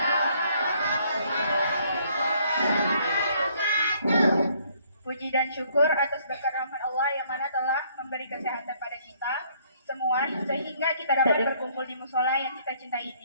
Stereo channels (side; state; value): both; inverted; correlation -0.65